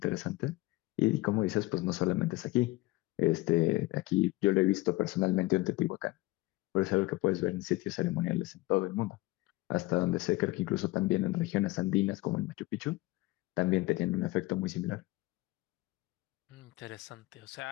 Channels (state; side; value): quieter; right; 20.5 dB